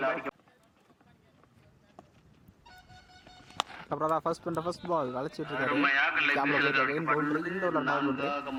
அப்புறம் தான் ஃபர்ஸ்ட் பால் வளைச்சிட்டு இருக்காரு.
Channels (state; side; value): identical; both; correlation 1.00